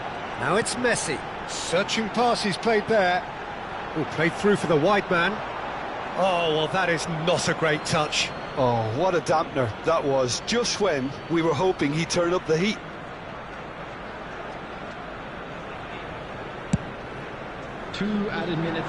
Now it's Messi. Searching pass he's played there. Oh, played through for the wide man. Oh, well, that is not a great touch. Oh, what a dampener that was, just when we were hoping he'd turn up the heat. Two added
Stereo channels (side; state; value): both; identical; correlation 1.00